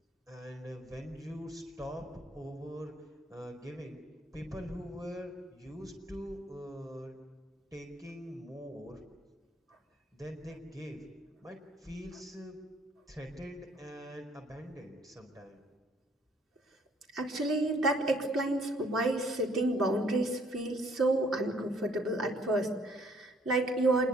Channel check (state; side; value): normal; both; correlation 0.62